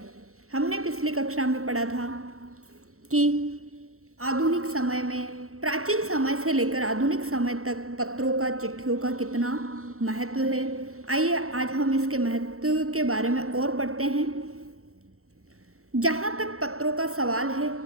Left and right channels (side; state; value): left; late; 0.63 ms